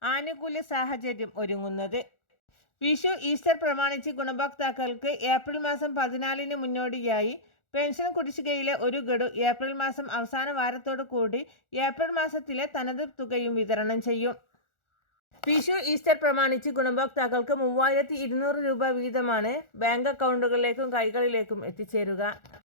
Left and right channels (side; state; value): right; late; 1.4 ms